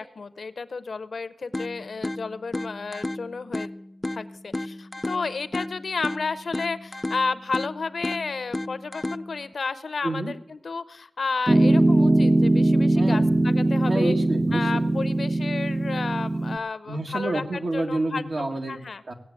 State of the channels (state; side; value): normal; both; correlation 0.96